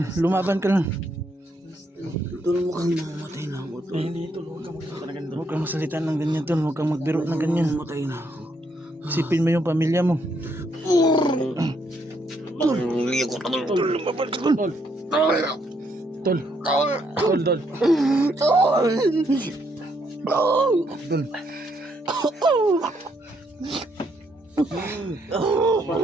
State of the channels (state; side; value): normal; both; correlation 0.74